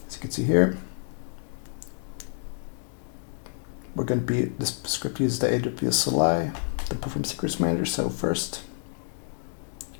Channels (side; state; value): right; silent; digital silence